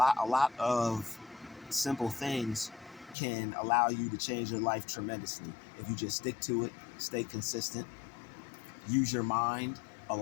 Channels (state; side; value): drops out; right; at 3.2 s